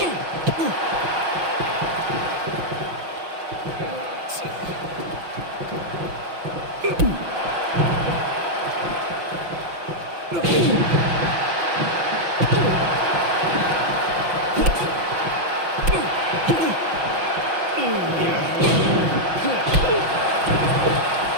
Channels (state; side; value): late; left; 6.1 ms